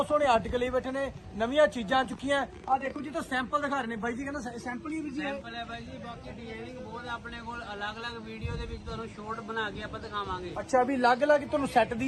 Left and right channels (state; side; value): identical; both; correlation 1.00